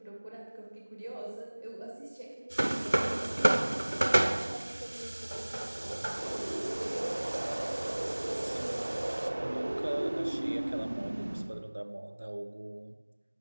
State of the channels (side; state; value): both; inverted; correlation -1.00